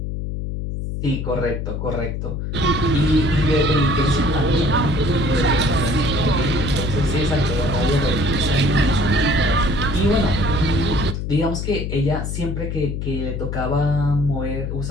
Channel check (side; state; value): left; noise; hum, 4 dB below the sound